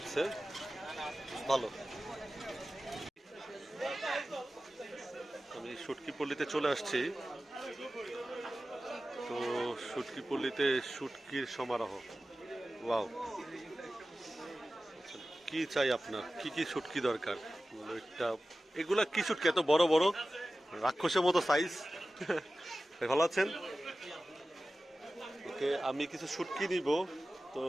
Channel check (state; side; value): normal; both; correlation 0.95